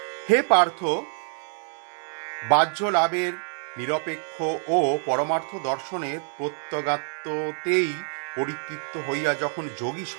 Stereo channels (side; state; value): left; silent; 56 dB below the other